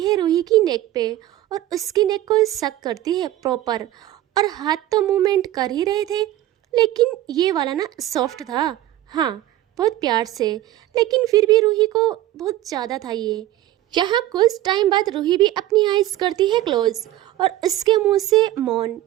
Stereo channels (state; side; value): quieter; left; 14.5 dB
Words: रूही की नेक पे और उसकी नेक को सक करती है प्रॉपर, और हाथ तो मूवमेंट कर ही रहे थे लेकिन ये वाला ना सॉफ्ट था, हाँ बहुत प्यार से, लेकिन फिर भी रूही को बहुत ज़्यादा था ये। यहाँ कुछ टाइम बाद रूही भी अपनी आईज करती है क्लोज और उसके मुंह से मौन,